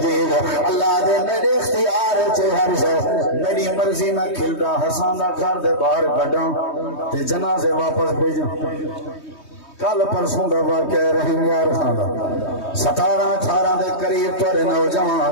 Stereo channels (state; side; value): late; right; 3.2 ms